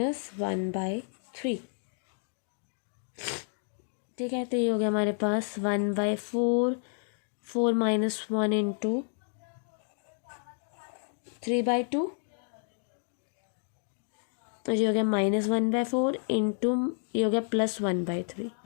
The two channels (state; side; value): silent; right; 57 dB below the other